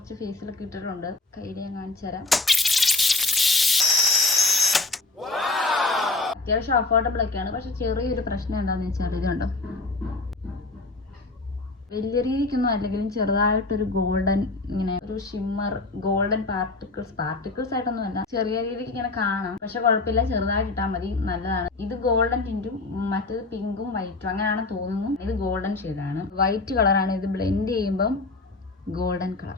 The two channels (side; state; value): right; quieter; 3.4 dB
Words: ഫേസിലൊക്കെ ഇട്ടിട്ടുണ്ട്. കയ്യിൽ ഞാൻ കാണിച്ചു തരാം. അത്യാവശ്യം അഫോർഡബിൾ ഒക്കെയാണ്. പക്ഷെ ചെറിയൊരു പ്രശ്നം എന്താണെന്ന് വെച്ചാൽ ഇത് കണ്ടോ, വലിയ രീതിക്കൊന്നും അല്ലെങ്കിലും ചെറുതായിട്ടൊരു ഗോൾഡൻ, ഇങ്ങനെ ഒരു ഷിമ്മർ ഗോൾഡൻ പാർട്ടിക്കിൾസ് ആയിട്ടൊന്നും അല്ല, ചെറിയ രീതിക്ക് ഇങ്ങനെ കാണാം. പക്ഷെ കുഴപ്പമില്ല, ചെറുതായിട്ട് ഇട്ടാൽ മതി, നല്ലതാണ്. ഇത് ഗോൾഡൻ ടിന്റും മറ്റേത് പിങ്കും വൈറ്റും അങ്ങനെയാണെന്ന് തോന്നുന്നു. ഇത് ഗോൾഡൻ ഷെയ്ഡാണ്, വൈറ്റ് കളറാണ്. ഇത് ബ്ലെൻഡ് ചെയ്യുമ്പം ഗോൾഡൻ